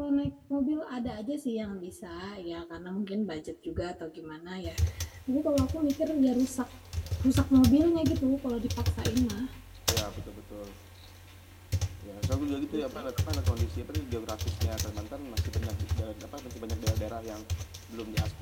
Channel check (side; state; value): both; identical; correlation 1.00